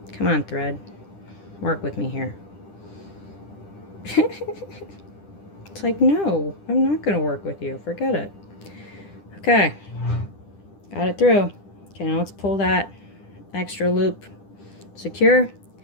Come on, thread. Work with me here. It's like, no, I'm not going to work with you. Forget it. Okay. Got it through. Okay, now let's pull that extra loop secure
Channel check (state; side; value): late; right; 10 ms